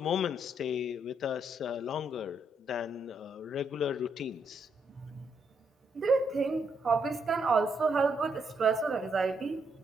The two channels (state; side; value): normal; both; correlation 0.76